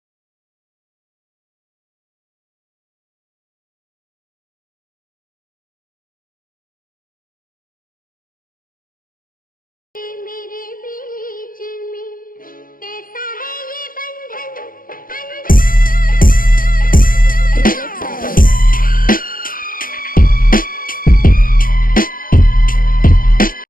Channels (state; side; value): late; right; 0.41 ms